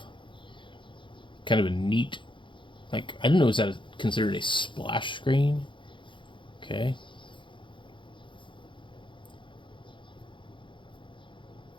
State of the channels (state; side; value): late; right; 0.24 ms